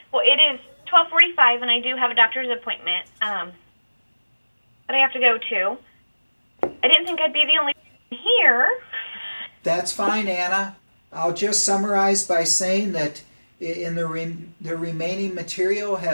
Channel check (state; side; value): inverted; both; correlation -1.00